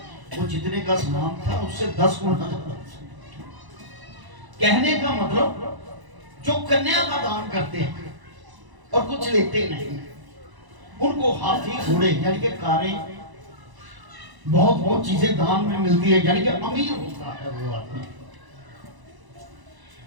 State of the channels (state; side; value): late; left; 1.0 ms